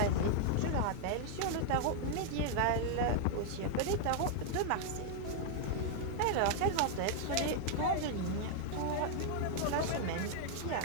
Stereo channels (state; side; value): different; both; correlation 0.00